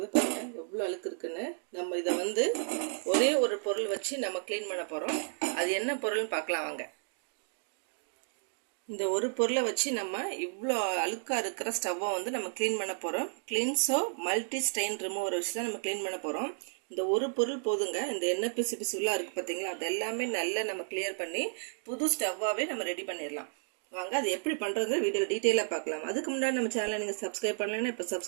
பாருங்கள், எவ்வளோ அழுக்கு இருக்குன்னு. நம்ம இதை வந்து ஒரே ஒரு பொருள் வச்சு நம்ம க்ளீன் பண்ண போகிறோம். அது என்ன பொருள்னு பார்க்கலாம் வாங்க. இந்த ஒரு பொருளை வச்சு நம்ம இவ்வளோ அழுக்காக இருக்கிற ஸ்டவ்வை வந்து நம்ம க்ளீன் பண்ண போகிறோம். கிளீன்ஸோ மல்டி ஸ்டெயின் ரிமூவர் வச்சு தான் நம்ம க்ளீன் பண்ண போகிறோம். இந்த ஒரு பொருள் போதுங்க. இந்த எண்ணெய் பிசு பிசுலாம் இருக்குது பார்த்தீங்களா, அது எல்லாமே நல்லா நம்ம கிளியர் பண்ணி புது ஸ்டவ்வாகவே நம்ம ரெடி பண்ணிடலாம். வாங்க அது எப்படி பண்ணுறது வீடியோ டீட்டெயிலாக பார்க்கலாம். அதுக்கு முன்னாடி நம்ம சேனலை நீங்கள் சப்ஸ்கிரைப் பண்ணலைன்னா இப்போ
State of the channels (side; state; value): left; silent; digital silence